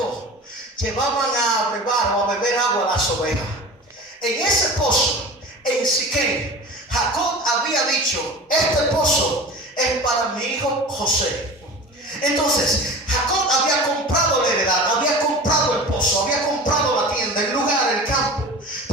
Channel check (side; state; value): both; normal; correlation 0.36